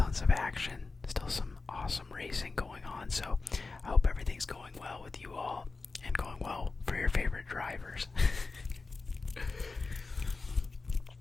of action, still some awesome racing going on. So I hope everything's going well with you all and going well for your favorite drivers.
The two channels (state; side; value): quieter; right; 3.9 dB